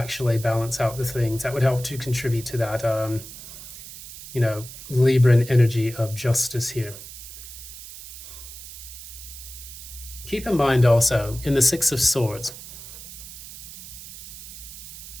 balance out the things. That would help to contribute to that, Libran energy of justice here. Keep in mind also, in the Six of Swords,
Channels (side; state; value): right; noise; hiss, 13 dB below the sound